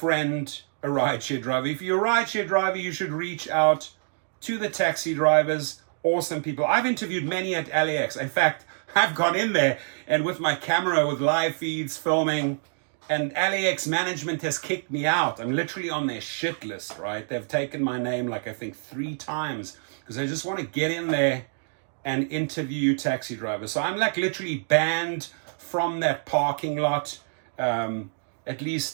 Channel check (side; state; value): left; silent; digital silence